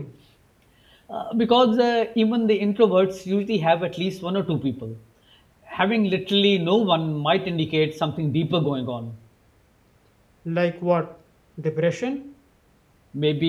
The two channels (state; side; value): identical; both; correlation 1.00